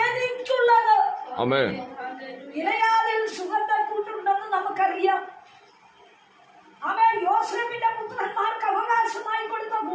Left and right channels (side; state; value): both; identical; correlation 1.00